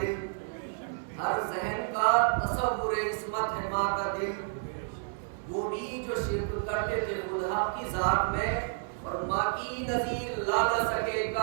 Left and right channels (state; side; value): silent; left; 57 dB below the other